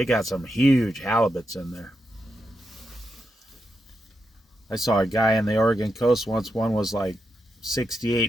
got some huge halibuts in there. I saw a guy in the Oregon coast once. One was like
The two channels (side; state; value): both; normal; correlation 0.85